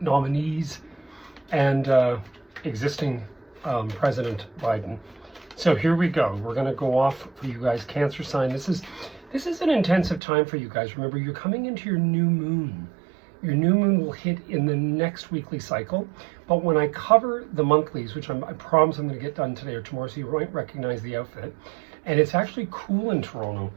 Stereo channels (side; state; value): left; drops out; at 10.2 s